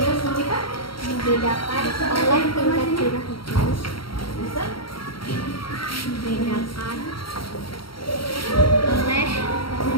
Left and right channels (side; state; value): right; late; 0.74 ms